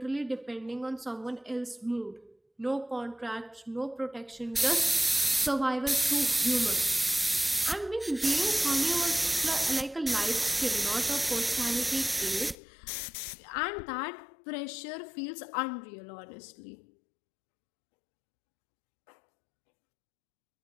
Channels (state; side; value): drops out; right; at 12.6 s